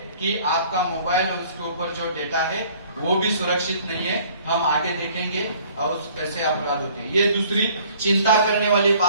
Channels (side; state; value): both; inverted; correlation -0.55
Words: कि आपका मोबाइल और उसके ऊपर जो डेटा है वो भी सुरक्षित नहीं है। हम आगे देखेंगे और कैसे अपराध होते हैं। ये दूसरी चिंता करने वाली